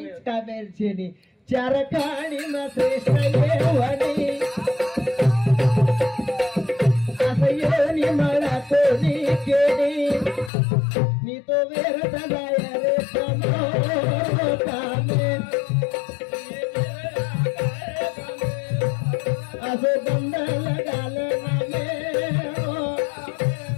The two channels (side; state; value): right; drops out; at 10.5 s